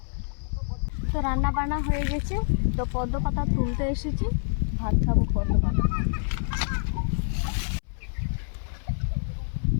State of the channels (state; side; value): silent; right; 60 dB below the other